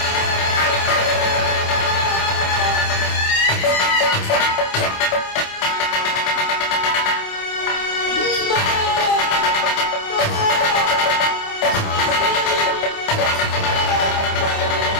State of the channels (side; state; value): right; late; 27 ms